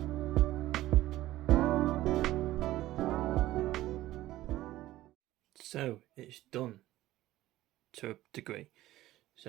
So it's done to a degree.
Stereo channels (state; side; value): quieter; left; 15.6 dB